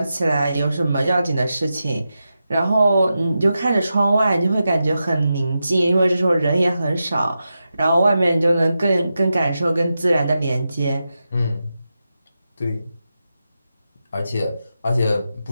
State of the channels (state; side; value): inverted; both; correlation -0.89